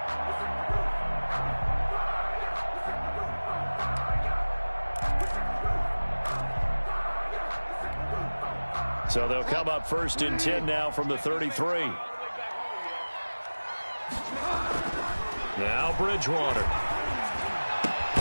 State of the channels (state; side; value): inverted; both; correlation -1.00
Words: So they'll come up first and 10 now from the 33. Now Bridgewater.